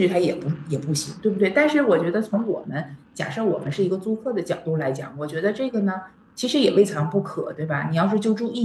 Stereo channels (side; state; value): both; identical; correlation 1.00